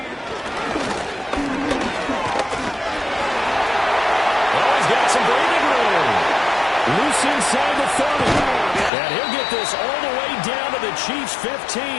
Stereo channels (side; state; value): right; drops out; at 8.9 s